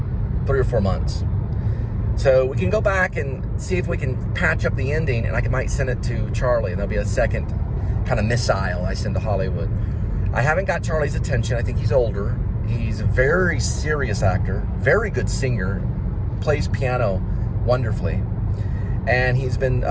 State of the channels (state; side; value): identical; both; correlation 1.00